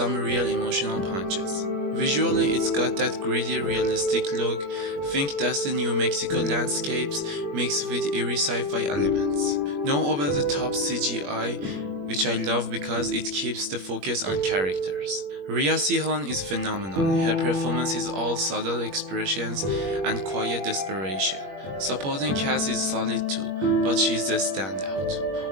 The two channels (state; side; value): late; left; 21 ms